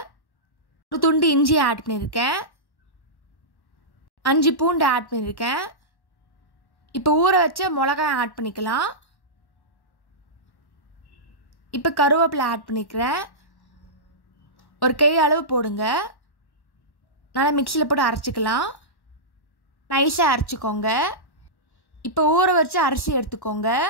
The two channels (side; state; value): right; late; 1.1 ms